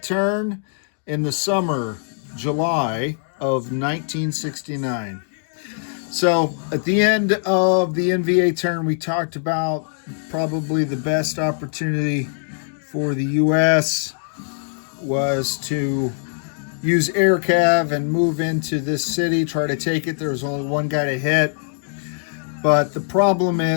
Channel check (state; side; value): silent; right; digital silence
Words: turn in the summer, July of 1969. So at the end of the NVA turn, we talked about probably the best opportunity for the U.S. was to use air cav and move into this city, try to take it. There was only one guy to hit. But the problem